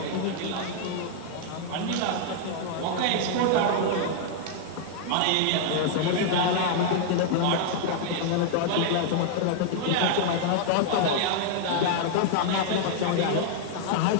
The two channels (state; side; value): different; both; correlation -0.01